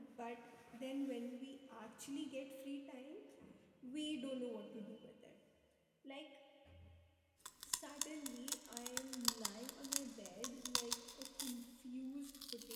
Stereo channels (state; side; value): identical; both; correlation 1.00